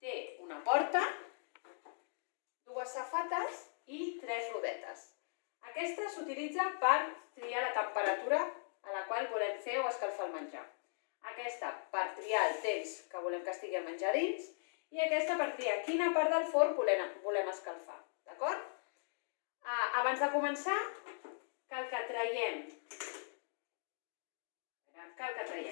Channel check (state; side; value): silent; right; digital silence